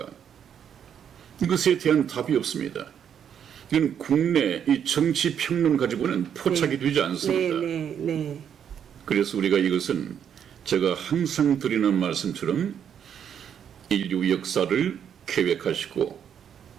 이것에 대한 답이 없습니다. 이건 국내 이 정치 평론 가지고는 포착이 되지 않습니다. 네, 네, 네. 그래서 우리가 이것은 제가 항상 드리는 말씀처럼 인류 역사를 계획하시고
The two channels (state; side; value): quieter; left; 8.5 dB